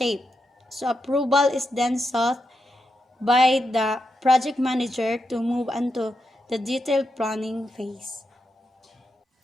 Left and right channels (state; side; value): normal; both; correlation 0.85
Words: So approval is then sought by the project manager to move on to the detailed planning phase.